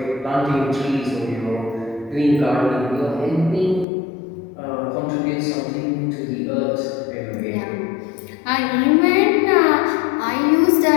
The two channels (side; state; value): right; drops out; at 3.9 s